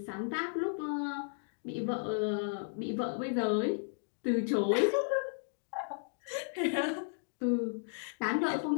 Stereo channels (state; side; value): silent; right; digital silence